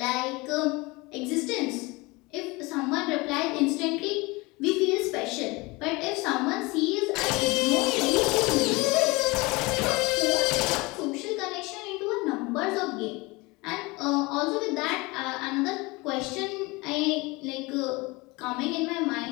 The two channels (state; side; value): quieter; right; 24.2 dB